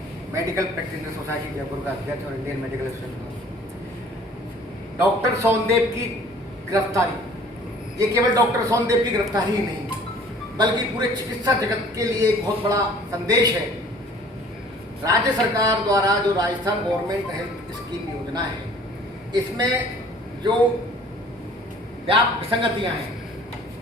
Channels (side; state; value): both; normal; correlation 0.51